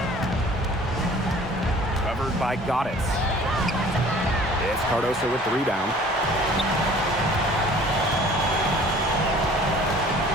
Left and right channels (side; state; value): both; normal; correlation 0.50